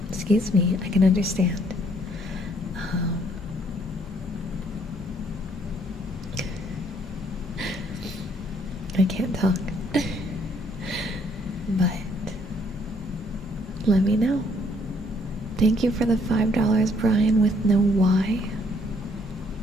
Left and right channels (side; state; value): both; normal; correlation 0.66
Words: Excuse me, I can understand. I can't talk. But let me know. Thank you for the $5, Brian with no Y.